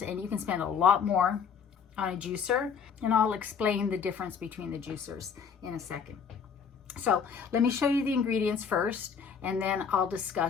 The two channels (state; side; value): quieter; right; 6.6 dB